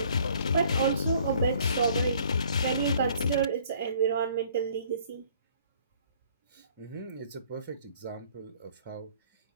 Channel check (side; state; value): both; inverted; correlation -0.58